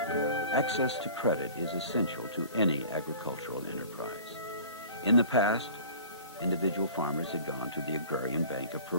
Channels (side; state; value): both; inverted; correlation -0.44